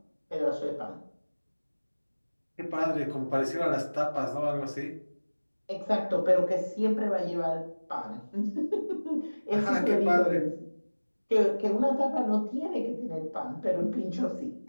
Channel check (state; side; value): inverted; both; correlation -1.00